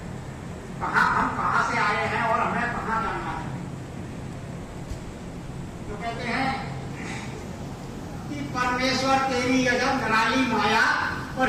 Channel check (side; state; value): both; identical; correlation 1.00